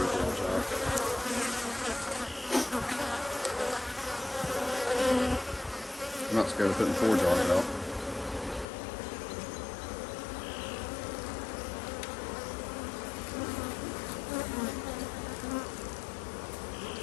out. I'm not scared of putting 4 jars out.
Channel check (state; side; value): drops out; right; at 8.7 s